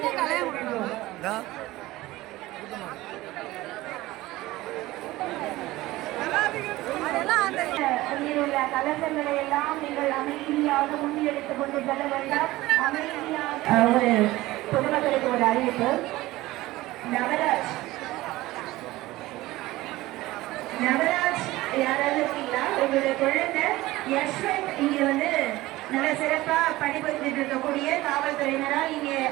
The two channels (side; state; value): left; quieter; 18.1 dB